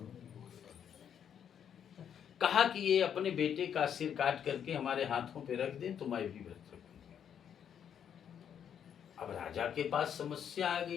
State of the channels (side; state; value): right; quieter; 8.6 dB